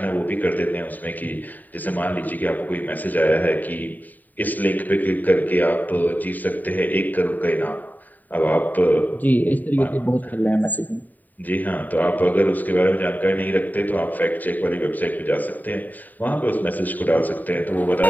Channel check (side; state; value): right; late; 0.085 ms